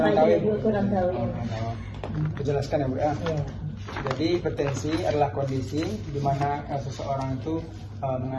Kurang tahu. Jelaskan ya Bu ya. Jadi hipertensi adalah kondisi di mana seseorang itu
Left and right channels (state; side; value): identical; both; correlation 1.00